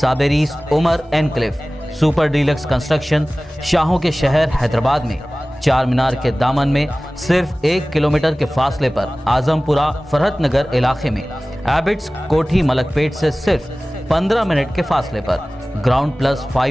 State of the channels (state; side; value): normal; both; correlation 0.98